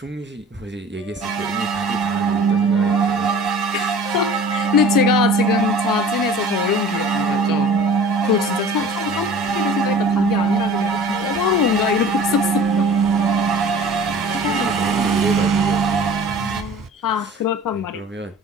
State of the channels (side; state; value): both; normal; correlation 0.43